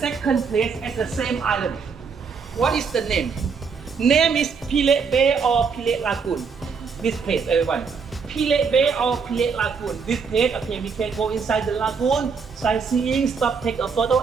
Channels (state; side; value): quieter; left; 5.6 dB